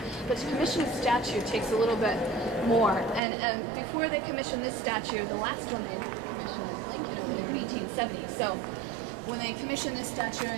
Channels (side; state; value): left; drops out; at 3.2 s